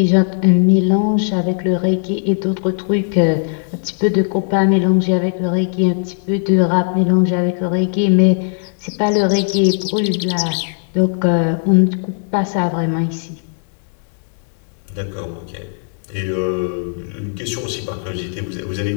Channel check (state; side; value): silent; right; digital silence